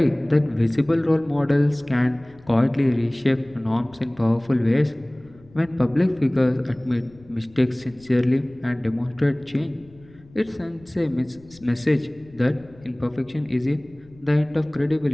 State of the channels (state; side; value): noise; left; rumble, 26 dB below the sound